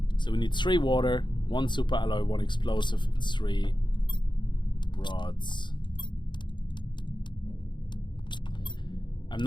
So we need 3 water, 1 super alloy, 1 explosive, and 3 rods. I'm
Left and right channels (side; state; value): right; late; 0.22 ms